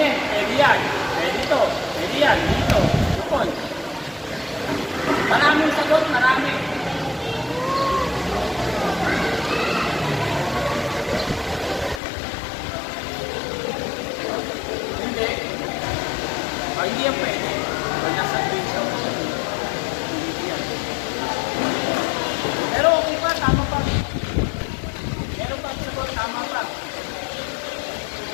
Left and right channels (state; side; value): drops out; right; at 12.0 s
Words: Pwede yan. Pwede ito. Pwede yan. Dito. Lupon. Maraming sagot. Marami. Hindi. Hindi yan pwede. Pag nasa video. Hindi yan. Pero okay pa. Tama pa. Meron pa sagot. Tama pa.